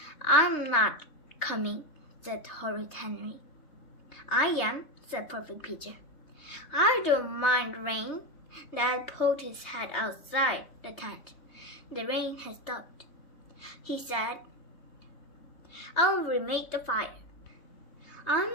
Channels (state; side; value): late; right; 3.3 ms